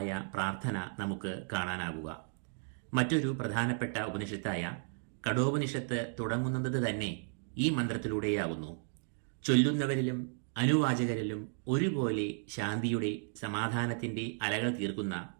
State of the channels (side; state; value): left; silent; 55 dB below the other